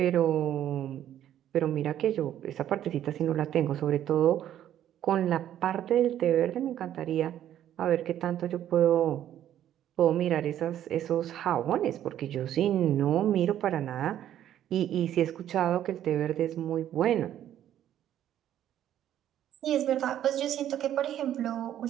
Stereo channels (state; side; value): quieter; left; 11.3 dB